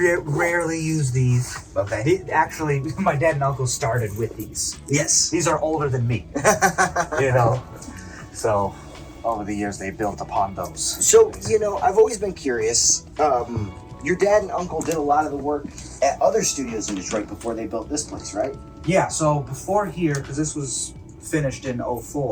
use these. Okay. Actually, my dad and uncle started with these. Yes. These are older than me. You know, so over the years they built upon those. So, you know, I've always been curious. Your dad and uncle did a lot of the work at other studios in Detroit before they built this place, right? Yeah. So before here, because this was finished in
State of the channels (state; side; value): identical; both; correlation 1.00